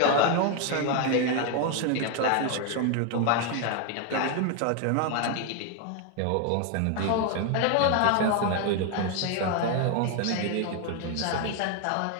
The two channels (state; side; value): different; both; correlation 0.01